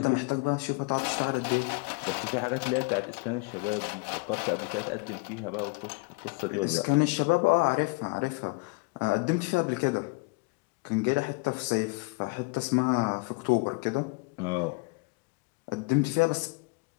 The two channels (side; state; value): right; quieter; 27.3 dB